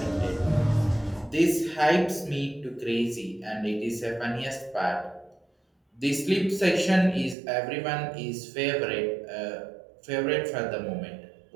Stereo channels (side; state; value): left; drops out; at 7.4 s